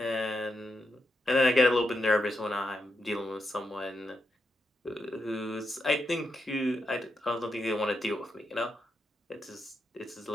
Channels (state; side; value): normal; both; correlation 0.84